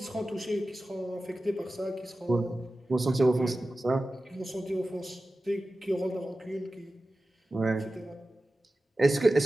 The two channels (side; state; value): both; normal; correlation 0.95